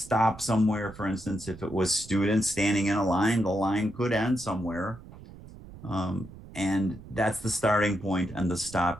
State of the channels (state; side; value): noise; right; rumble, 17 dB below the sound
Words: somewhere. For instance, if it was students standing in a line, the line could end somewhere. And that's the starting point and the